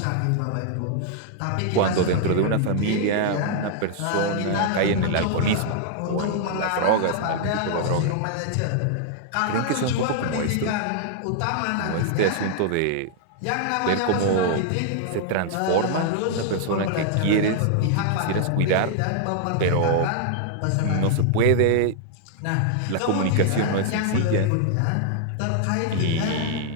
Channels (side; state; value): both; different; correlation -0.01